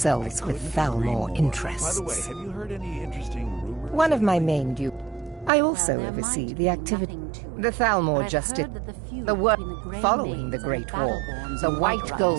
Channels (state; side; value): drops out; left; at 5.5 s